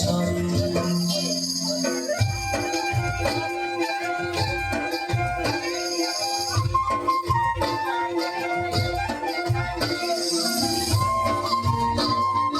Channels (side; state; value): both; identical; correlation 1.00